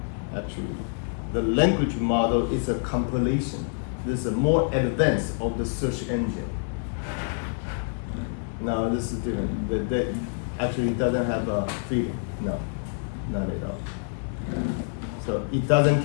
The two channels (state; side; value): silent; right; digital silence